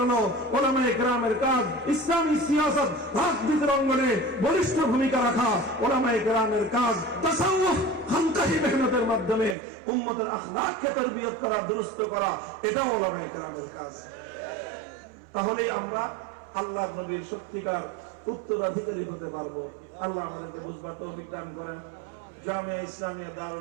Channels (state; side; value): drops out; left; at 9.6 s